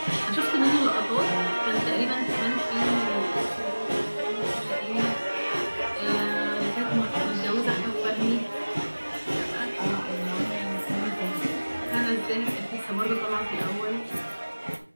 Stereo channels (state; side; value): inverted; both; correlation -1.00